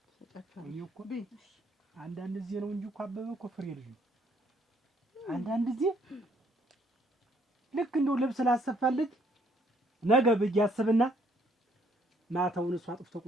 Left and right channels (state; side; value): normal; both; correlation 0.66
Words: ሰጣችኋል። እኔ እኮ አንዳንድ ጊዜ ነው እንጂ እኮ አበበ እኮ ፍሬ ልጅ ነው። አንዳንድ ጊዜ ልክ እንደው ልብስ ላሰፋልኝ ነገ ብዬ አስብና ማታውን እሱ አጥፍቶ